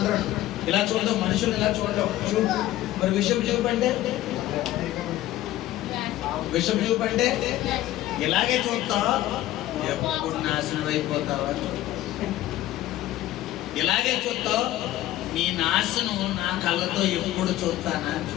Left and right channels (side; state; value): right; quieter; 14.8 dB